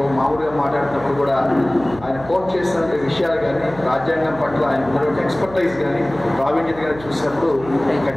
మామూలుగా మాట్లాడుతున్నప్పుడు కూడా ఆయన కోట్ చేసిన విషయాలు కానీ, రాజ్యాంగం పట్ల ఆయన ఉన్నటువంటి ఎక్స్పర్టైజ్ కానీ, ప్రావీణ్యత కానీ చూసినప్పుడు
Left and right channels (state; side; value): noise; right; hum, 17 dB below the sound